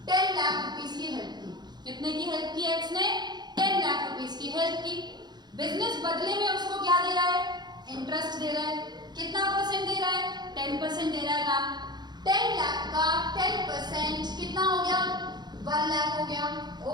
10 लाख रुपीस की हेल्प की। कितने की हेल्प की? X ने 10 लाख रुपीस की हेल्प की। बिजनेस बदले में उसको क्या दे रहा है? इंटरेस्ट दे रहा है। कितना परसेंट दे रहा है? 10% दे रहा है मैम। 10 लाख का 10% कितना हो गया? 1 लाख हो गया।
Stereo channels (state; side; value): late; left; 0.21 ms